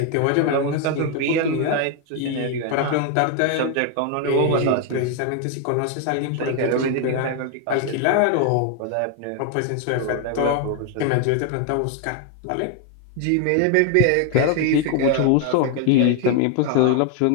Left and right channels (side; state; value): both; different; correlation 0.01